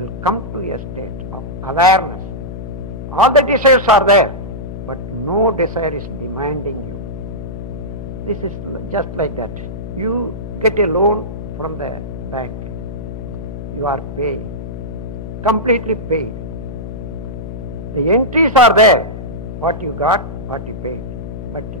will come to a state of awareness. All the desires are there, but no desire is demanding you. This is just like that. You get a loan from the bank. You are paying, completely paid. The entries are there, what you got, what you paid. But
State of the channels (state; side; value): noise; left; hum, 8 dB below the sound